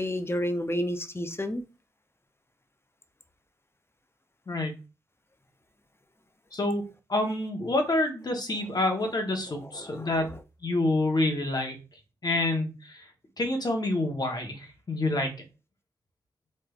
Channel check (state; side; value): normal; both; correlation 0.66